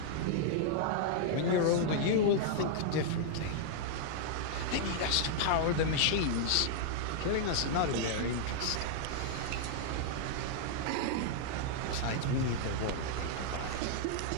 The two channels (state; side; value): different; both; correlation -0.01